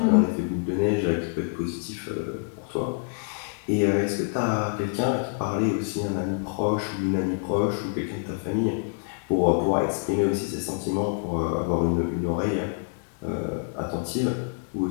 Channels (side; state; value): right; silent; 61 dB below the other